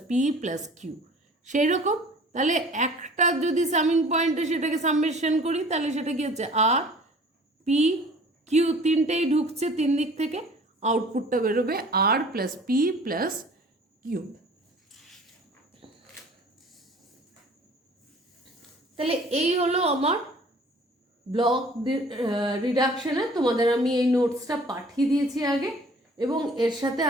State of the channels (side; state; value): both; normal; correlation 0.49